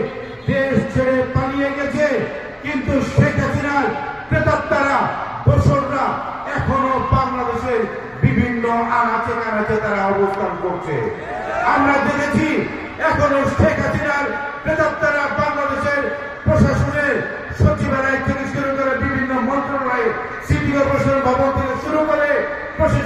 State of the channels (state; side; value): identical; both; correlation 1.00